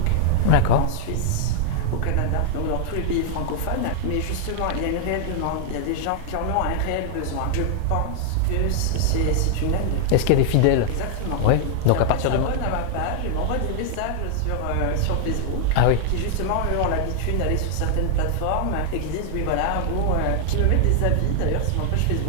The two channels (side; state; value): both; different; correlation 0.00